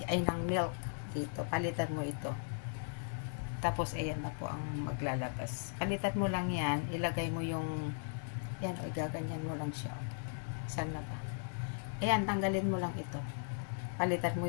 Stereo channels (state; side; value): silent; right; digital silence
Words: ay ng milk dito. Palitan mo ito. Tapos, ayan na po ang maglalabas. Palitan mo lang yan, ilagay mo yung, yan, o gaganyan mo lang siya. Saan na ba? Ayan, tanggalin mo lang ito. Palitan